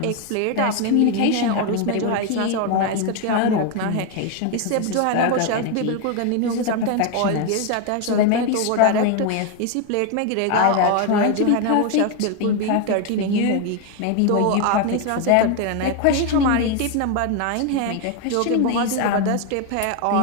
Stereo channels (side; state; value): both; different; correlation 0.01